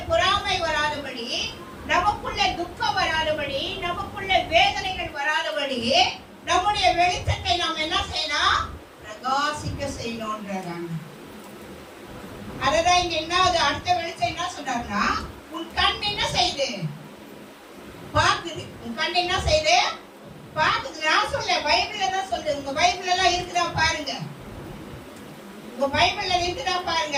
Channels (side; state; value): both; identical; correlation 1.00